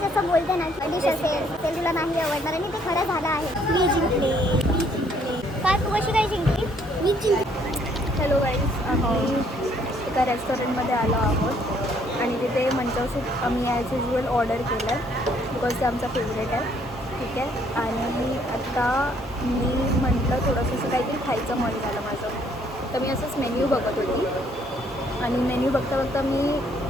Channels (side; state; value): both; normal; correlation 0.65